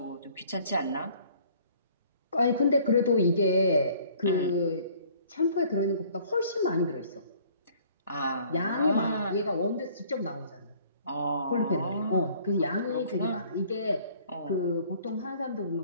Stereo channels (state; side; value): inverted; both; correlation -0.56